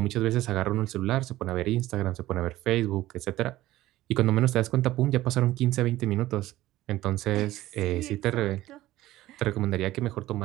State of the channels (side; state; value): left; quieter; 15.9 dB